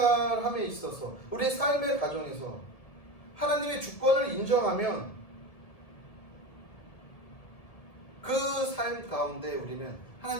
있어서, 우리의 삶의 가정에서 하나님의 주권을 인정하면 그 삶 가운데 우리는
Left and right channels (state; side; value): late; right; 1.7 ms